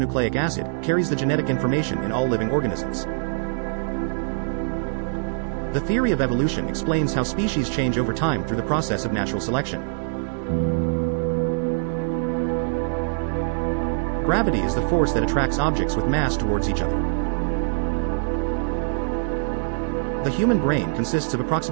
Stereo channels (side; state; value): left; silent; digital silence